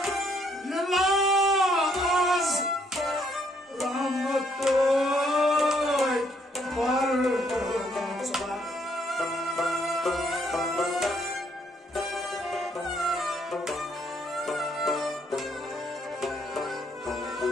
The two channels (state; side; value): normal; both; correlation 0.69